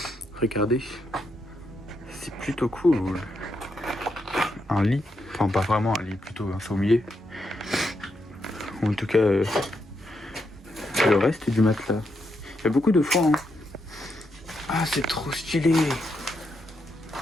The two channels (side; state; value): both; normal; correlation 0.81